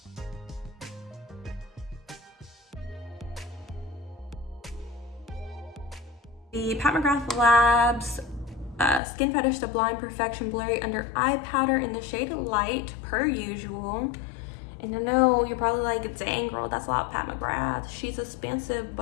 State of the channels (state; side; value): drops out; right; at 9.0 s